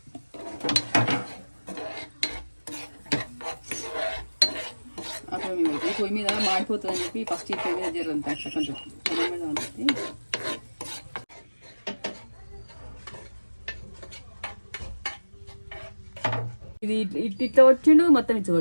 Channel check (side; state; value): both; inverted; correlation -1.00